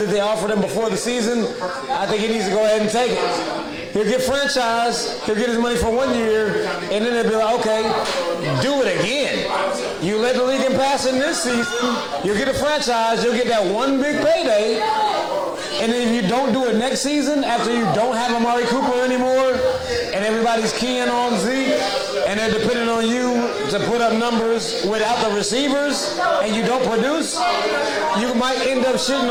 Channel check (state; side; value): identical; both; correlation 1.00